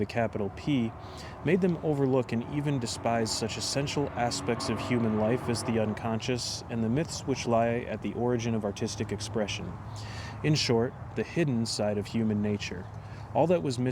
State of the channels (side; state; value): both; identical; correlation 1.00